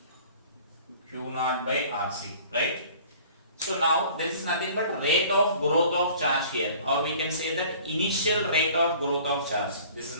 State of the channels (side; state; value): both; inverted; correlation -0.49